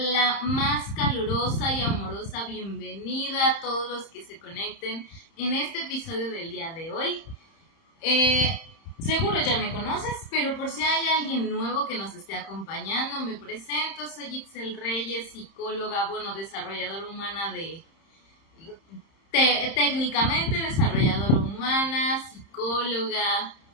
más calurosa y amorosa bienvenida a todos los que se conecten en este episodio del día de hoy. Seguro ya me conoces, pero por si hay alguien nuevo que nos esté acompañando, me presento. Soy Ixel Reyes, psicóloga, desarrolladora humana técnicamente desarrolladora humana, psicóloga.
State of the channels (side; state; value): right; late; 30 ms